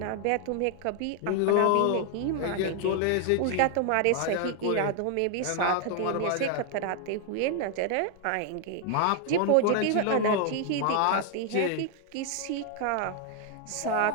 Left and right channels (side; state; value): both; different; correlation 0.00